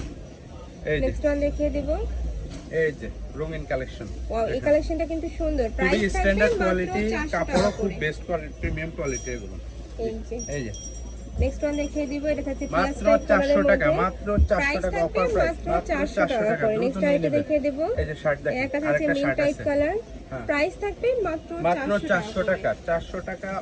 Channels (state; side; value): identical; both; correlation 1.00